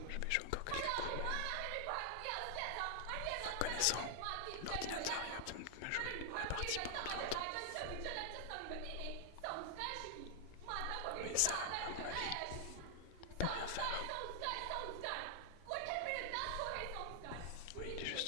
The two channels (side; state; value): both; different; correlation 0.00